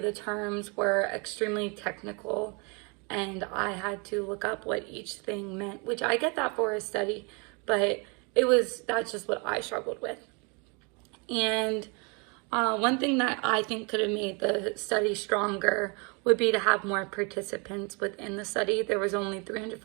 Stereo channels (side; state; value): left; quieter; 32.4 dB